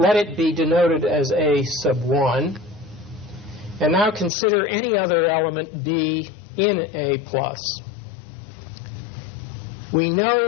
it be denoted as A sub 1. And now consider any other element B in A+. We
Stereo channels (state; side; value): drops out; right; at 4.3 s